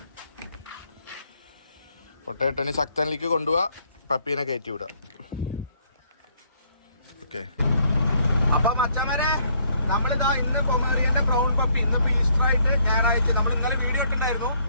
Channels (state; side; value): inverted; both; correlation -0.68